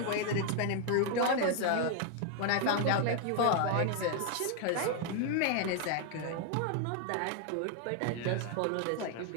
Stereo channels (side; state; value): both; different; correlation 0.00